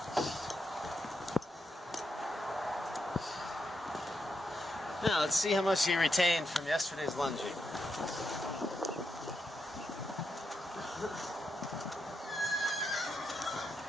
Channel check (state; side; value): normal; both; correlation 0.83